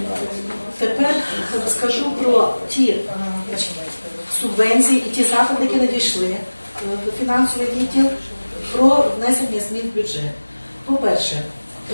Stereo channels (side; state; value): both; inverted; correlation -1.00